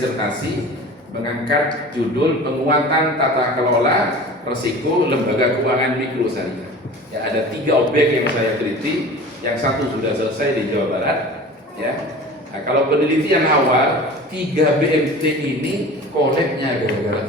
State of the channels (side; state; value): both; normal; correlation 0.39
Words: mengangkat judul penguatan tata kelola risiko lembaga keuangan mikro syariah. Ya, ada 3 objek yang saya teliti, yang satu sudah selesai di Jawa Barat. Ya, nah, kalau penelitian awal 3 BMT ini koleknya